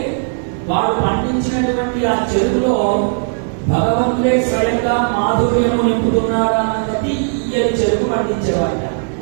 వాడు పండించినటువంటి ఆ చెరుకులో భగవంతుడే స్వయంగా మాధుర్యము నింపుతున్నాడు అన్నది ఈ చెరుకు పండించేవాడు.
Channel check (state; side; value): silent; left; digital silence